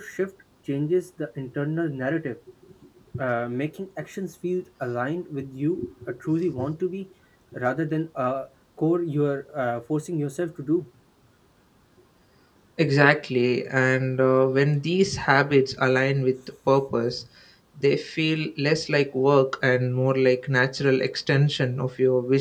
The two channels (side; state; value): both; identical; correlation 1.00